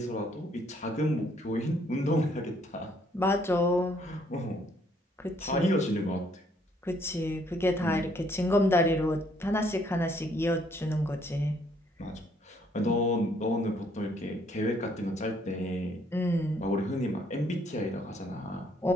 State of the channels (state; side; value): normal; both; correlation 0.67